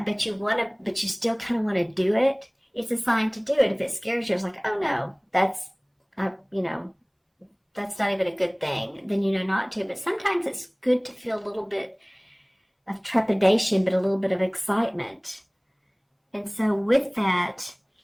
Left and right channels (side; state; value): both; identical; correlation 1.00